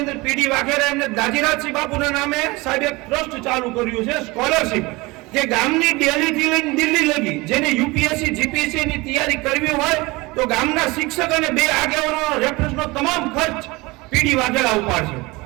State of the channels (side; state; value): left; quieter; 23.3 dB